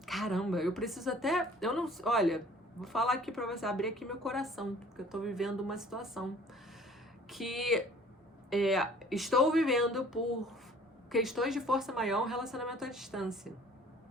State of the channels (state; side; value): normal; both; correlation 0.52